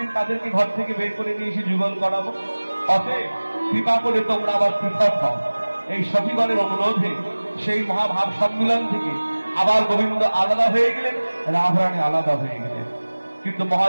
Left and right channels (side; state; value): both; inverted; correlation -1.00